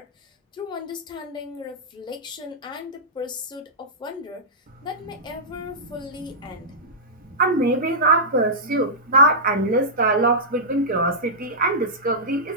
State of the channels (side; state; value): both; normal; correlation -0.13